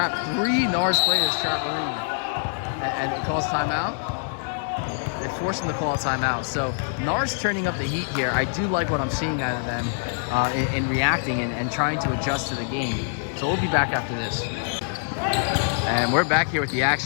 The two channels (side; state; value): right; silent; digital silence